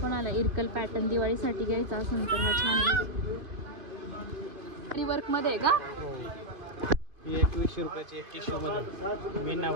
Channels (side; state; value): left; late; 2.5 ms